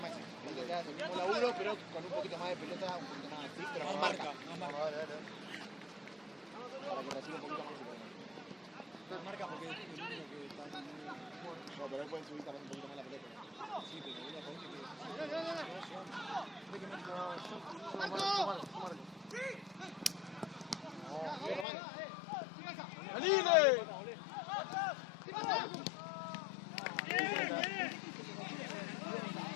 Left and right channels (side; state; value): right; drops out; at 21.7 s